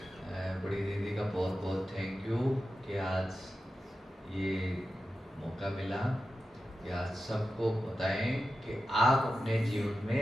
बड़ी दीदी का बहुत बहुत थैंक यू कि आज ये मौका मिला कि आज सबको बताएं कि आप अपने जीवन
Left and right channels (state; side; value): normal; both; correlation 0.92